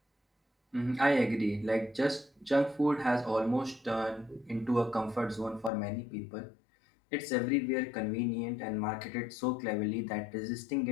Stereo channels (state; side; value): drops out; right; at 5.7 s